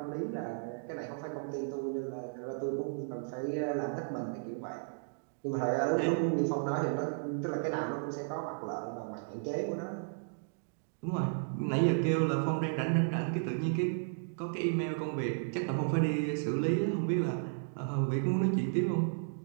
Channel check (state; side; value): silent; left; digital silence